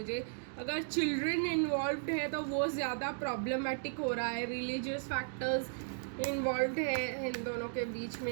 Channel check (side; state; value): left; silent; digital silence